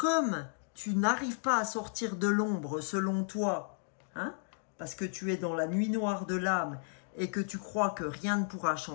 tu n'arrives pas à sortir de l'ombre selon toi, hein, parce que tu es dans la nuit noire de l'âme et que tu crois que rien ne pourra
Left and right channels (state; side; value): silent; right; digital silence